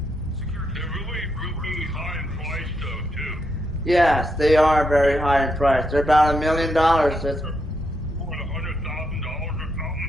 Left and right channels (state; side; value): normal; both; correlation 0.81